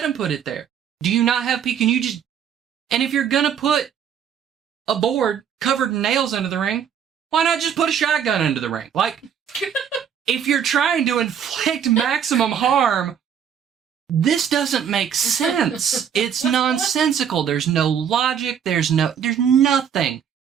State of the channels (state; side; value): quieter; left; 8.3 dB